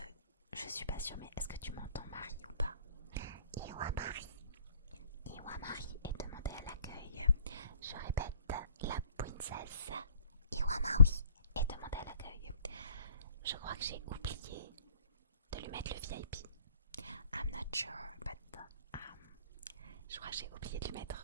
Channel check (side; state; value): both; inverted; correlation -0.55